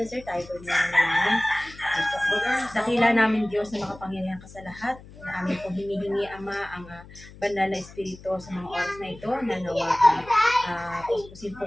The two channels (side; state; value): left; noise; hum, 19 dB below the sound